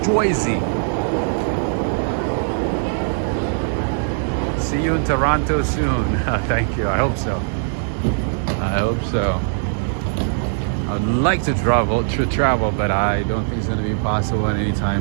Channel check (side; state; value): left; silent; digital silence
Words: Jersey. See you in Toronto soon. Thank you. I hope so. I'd like to travel, but I don't think it's going to be possible